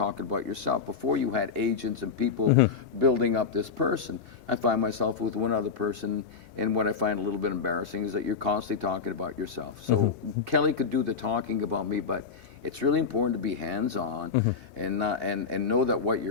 about yourself. Before you had agents and people building up this person. I find myself with one other person, and what I find a little bit embarrassing is that you're constantly talking about yourself. So Kelly could do the talking about me, but it's really important to be hands-on and know that what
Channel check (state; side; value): quieter; right; 5.6 dB